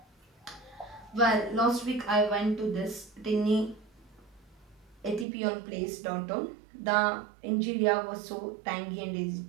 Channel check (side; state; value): left; drops out; at 5.2 s